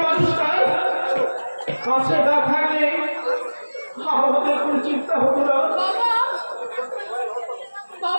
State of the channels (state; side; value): inverted; both; correlation -1.00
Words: মানুষটা কাছে না থাকলে আমাদের কোনো চিন্তা হতো না।